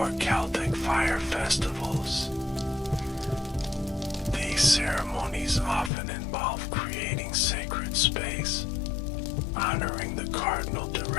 Celtic fire festivals. These ceremonies often involve creating sacred space, honoring the cardinal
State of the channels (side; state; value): right; drops out; at 5.9 s